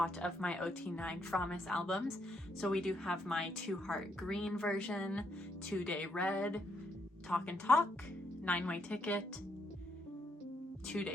of my OT9 Fromis albums. So we do have my 2 Heart Green version, 2 Day Red, Talk and Talk, 9-Way Ticket, 2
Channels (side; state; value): both; normal; correlation 0.75